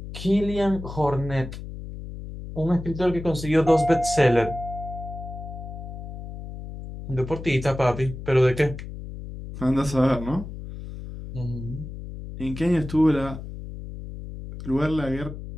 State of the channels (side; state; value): left; noise; hum, 10 dB below the sound